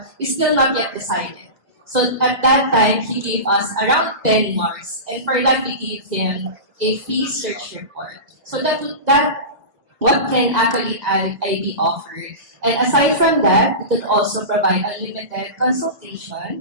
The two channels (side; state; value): left; late; 1.9 ms